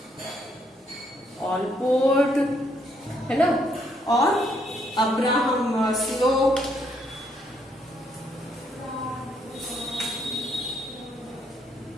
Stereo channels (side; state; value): both; normal; correlation 0.72